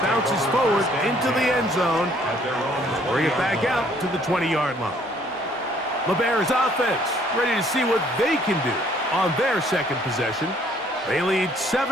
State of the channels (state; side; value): normal; both; correlation 0.62